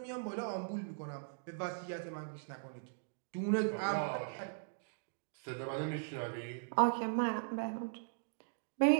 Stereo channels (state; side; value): silent; left; digital silence